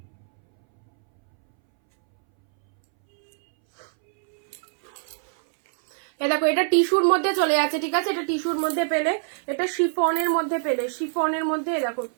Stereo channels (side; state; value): left; silent; 63 dB below the other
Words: দেখো এটা টিস্যুর মধ্যে চলে যাচ্ছে, ঠিক আছে। এটা টিস্যুর মধ্যে পেলে, এটা শিফনের মধ্যে পেলে, শিফনের মধ্যে দেখো